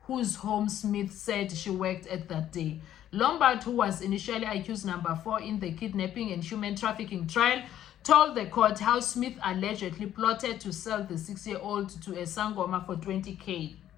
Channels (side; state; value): right; quieter; 11.5 dB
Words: whose home Smith said she worked at that day. Lombard, who was initially accused number 4 in the kidnapping and human trafficking trial, told the court how Smith allegedly plotted to sell the 6-year-old to a sangoma for 20K.